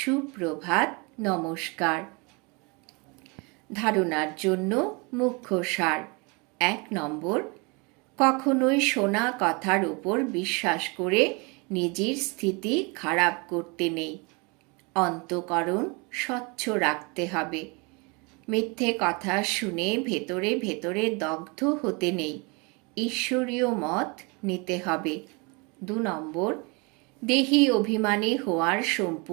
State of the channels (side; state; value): left; quieter; 29.6 dB